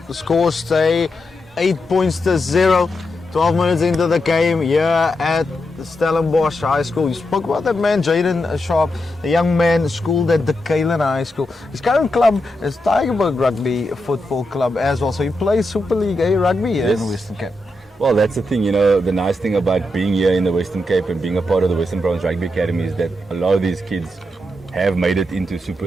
The scores stay 8 points to 0. 12 minutes into the game here at the Stellenbosch High School. You spoke about that man, Jaden Sharp, the young man schooled at the Kalen High School. His current club is Tigerberg Rugby Football Club as well. So he plays Super League A rugby here in Western Cape. Well, that's the thing, you know, the nice thing about being here in the Western Cape and being a part of the Western Province Rugby Academy is that a lot of these kids have made it into Super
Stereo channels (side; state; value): both; normal; correlation 0.85